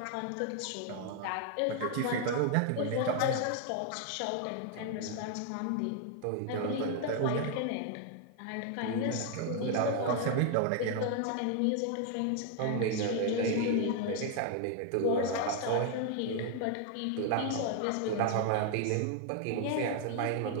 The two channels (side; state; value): both; different; correlation 0.00